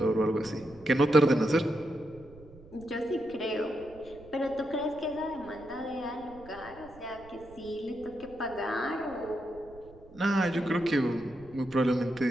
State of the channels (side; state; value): right; noise; rumble, 21 dB below the sound